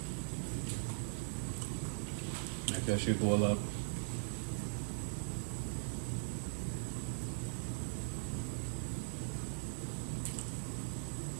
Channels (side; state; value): left; silent; 51 dB below the other